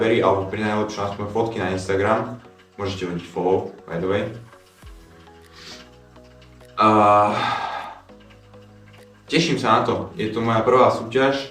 alebo pri najlepšom aspoň fotky na Instagram. Môžete hodiť follow, by the way. Teším sa na to, je to moja prvá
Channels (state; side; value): identical; both; correlation 1.00